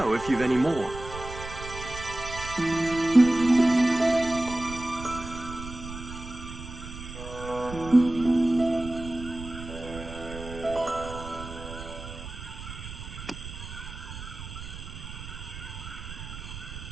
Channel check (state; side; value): noise; right; rumble, 11 dB below the sound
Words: if you've any more.